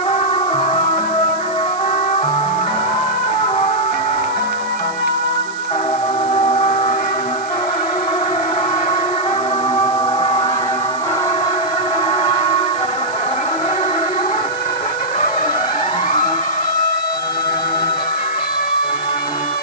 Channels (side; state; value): right; noise; hiss, 18 dB below the sound